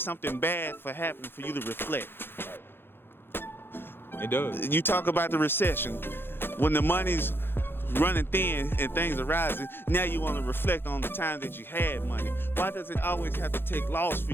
something bad for happening for you to reflect. It does. You talk about the recession. When the money's running thin and things are rising, now you want to reflect on the time that you had money. Why does it always have to take loss for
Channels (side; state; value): right; late; 0.10 ms